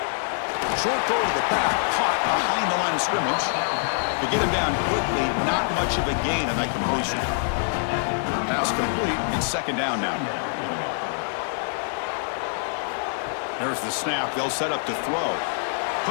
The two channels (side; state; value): right; silent; 62 dB below the other